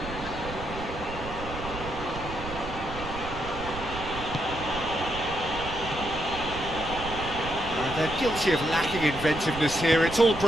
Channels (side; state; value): right; noise; rumble, 10 dB below the sound